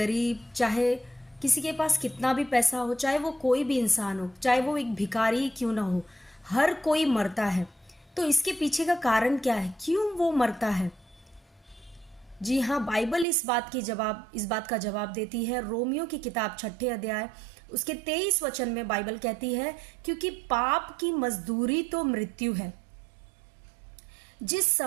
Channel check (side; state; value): left; drops out; at 13.2 s